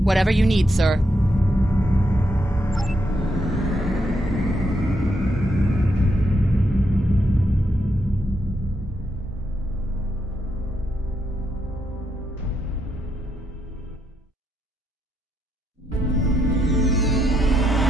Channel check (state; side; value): normal; both; correlation 0.79